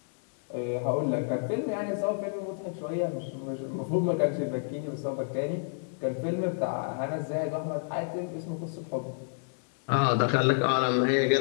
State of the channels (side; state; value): right; silent; digital silence